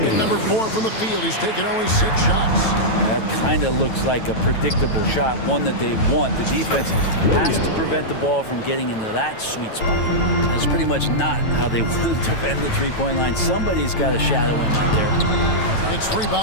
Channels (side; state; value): right; late; 9.1 ms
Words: number 4 from the field. He's taken only 6 shots. That kind of looks like a predictable shot, one that they want. The defense has to prevent the ball from getting into that sweet spot. That's pretty much not how they want to defend the three-point line. Somebody's got to shadow him out there. It's